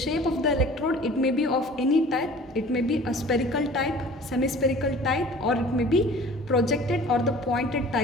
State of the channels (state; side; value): normal; both; correlation 0.46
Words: of the electrode, it may be of any type. It may be a spherical type, semi-spherical type, or it may be projected or the pointed